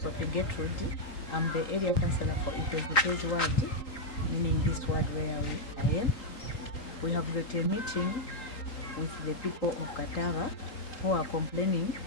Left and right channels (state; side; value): late; right; 3.8 ms